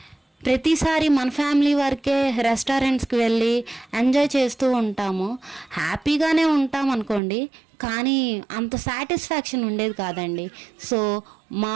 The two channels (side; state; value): left; drops out; at 7.2 s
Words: ప్రతిసారి మన ఫ్యామిలీ వరకే రెస్టారెంట్స్కి వెళ్ళి ఎంజాయ్ చేస్తూ ఉంటాము, హ్యాపీగానే ఉంటాం అనుకోండి, కానీ అంత సాటిస్ఫాక్షన్ ఉండేది కాదండి. సో మా